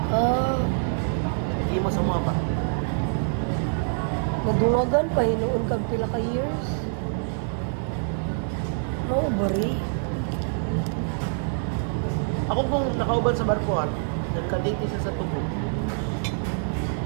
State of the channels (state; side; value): silent; left; digital silence